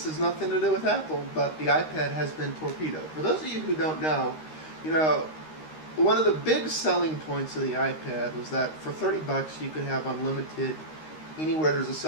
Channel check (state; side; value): late; right; 13 ms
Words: nothing to do with Apple, but the iPad has been torpedoed. For those of you who don't know, you know, one of the big selling points of the iPad was that for $30 you could have unlimited anywhere there's a